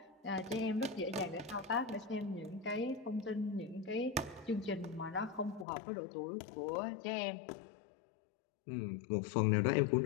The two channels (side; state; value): right; drops out; at 5.7 s